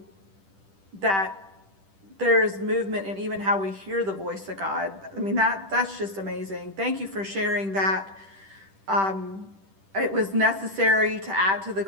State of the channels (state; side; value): late; left; 10 ms